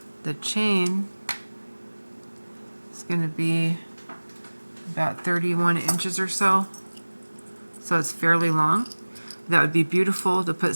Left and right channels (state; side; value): inverted; both; correlation -1.00